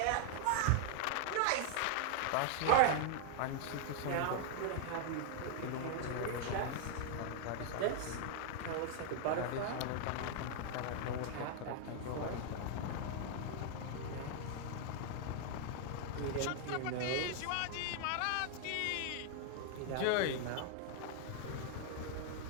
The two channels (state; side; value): different; both; correlation 0.00